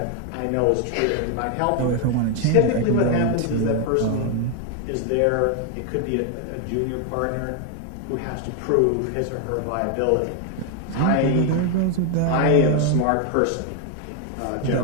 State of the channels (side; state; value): both; different; correlation 0.01